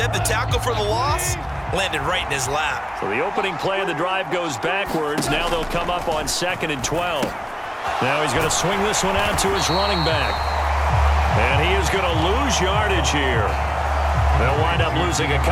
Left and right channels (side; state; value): both; identical; correlation 1.00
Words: the tackle for the loss landed right in his lap. So the opening play of the drive goes backwards. Now they'll come up on 2nd and 12. Now he's going to swing this one out to his running back. And he is going to lose yardage here. They'll wind up losing a